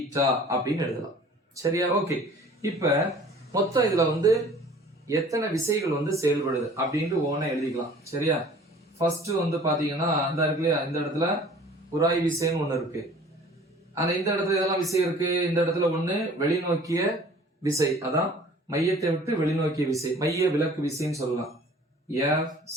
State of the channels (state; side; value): normal; both; correlation 0.49